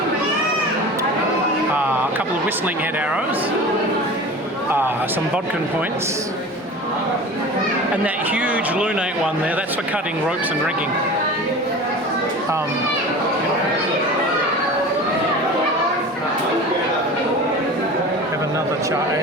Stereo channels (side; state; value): both; normal; correlation 0.36